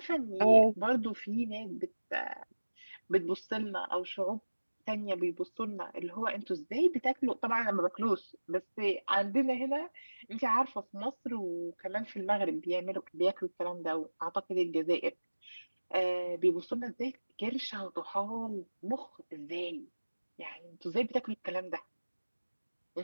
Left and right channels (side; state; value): both; inverted; correlation -1.00